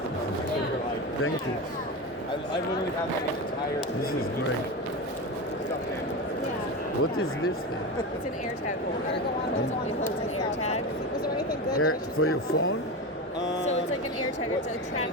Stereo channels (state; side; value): normal; both; correlation 0.21